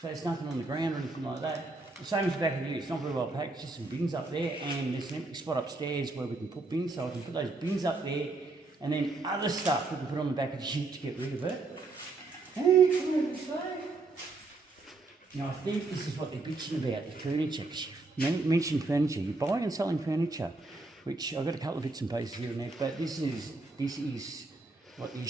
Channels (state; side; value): quieter; left; 3.4 dB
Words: so there's nothing on the ground or anything like that. The same as the back of the ute, it's not very well packed, it's just some bins up there, and there's an empty spot upstairs where we can put bins, so I can put those bins up there, and then other stuff we can put on the back of the ute to get rid of it. Now I think this is what they're bitching about, the furniture. You mentioned furniture, you're buying and selling furniture, which I've got a couple of bits and pieces here and there, but this is what the